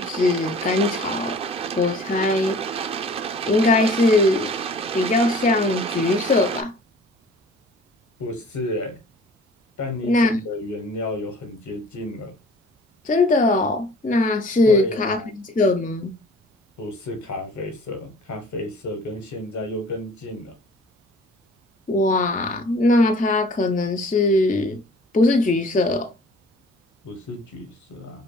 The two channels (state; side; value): normal; both; correlation 0.49